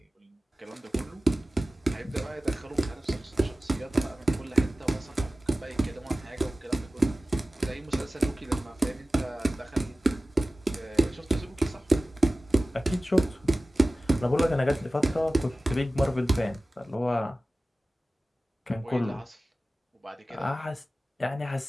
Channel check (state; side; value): normal; both; correlation 0.96